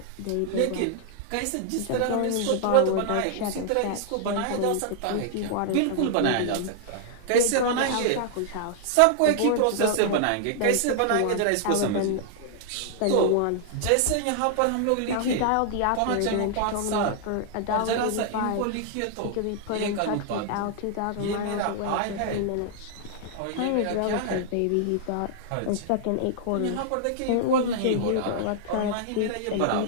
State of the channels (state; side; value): different; both; correlation -0.01